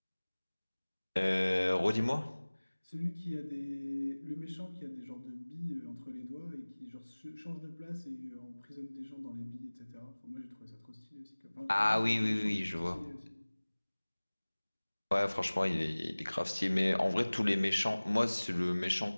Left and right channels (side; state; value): both; inverted; correlation -1.00